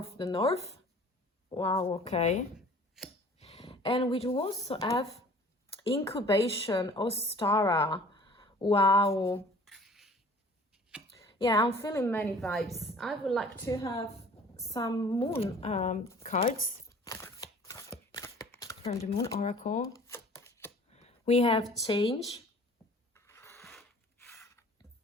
Wow, okay. And we do also have incubation, Ostara. Wow. Yeah, I'm feeling many vibes. I would like to have some moon cards from the Moon Oracle. We have change.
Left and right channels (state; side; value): normal; both; correlation 0.49